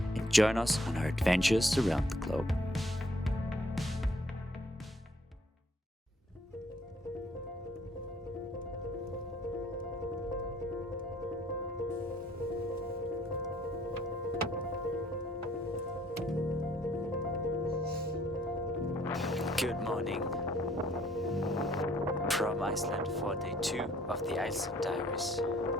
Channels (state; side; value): normal; both; correlation 0.63